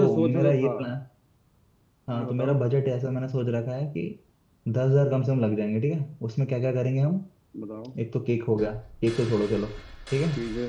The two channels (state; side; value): identical; both; correlation 1.00